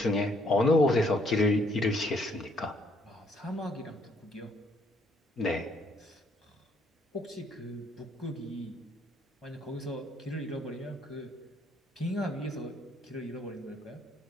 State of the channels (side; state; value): both; normal; correlation 0.67